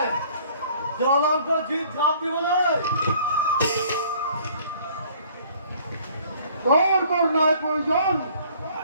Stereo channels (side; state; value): both; inverted; correlation -0.55